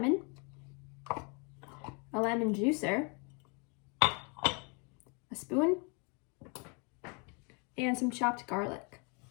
a lemon juicer, a spoon, and some chopped garlic.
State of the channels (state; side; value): quieter; right; 34.3 dB